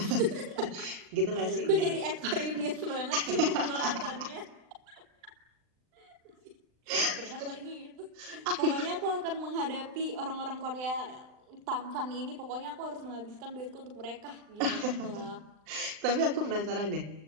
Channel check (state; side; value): late; left; 39 ms